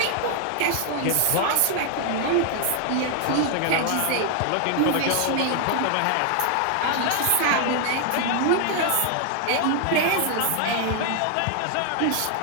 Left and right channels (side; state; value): both; different; correlation 0.00